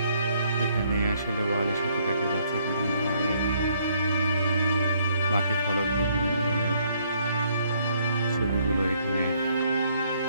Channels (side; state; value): both; inverted; correlation -0.67